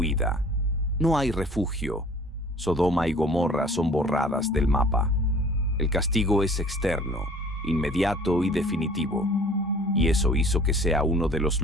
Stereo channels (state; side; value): normal; both; correlation 0.50